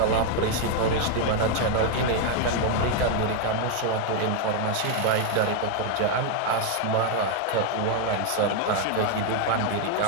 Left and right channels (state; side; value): different; both; correlation 0.00